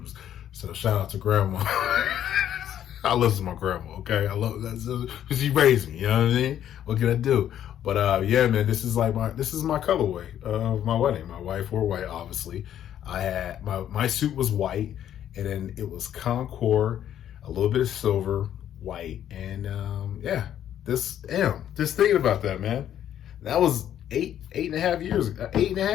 So shout out to grandma. I listen to my grandma, okay? I love that because she raised me, you know what I mean? What can I do? But yeah, man, this is my colorway of my wedding. My wife wore white, obviously. I had my suit was white, and then it was Concord, a little bit of silver, white, and yeah. Just thinking about that, man. That was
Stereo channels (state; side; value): quieter; right; 10.6 dB